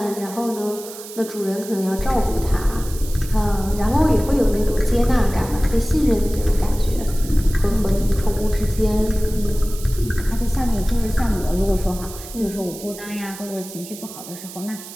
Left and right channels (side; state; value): right; noise; hiss, 14 dB below the sound